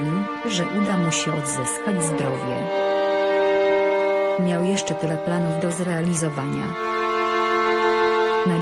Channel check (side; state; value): both; identical; correlation 1.00